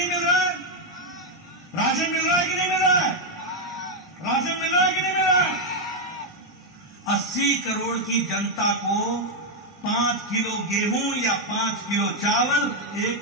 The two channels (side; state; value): both; normal; correlation 0.01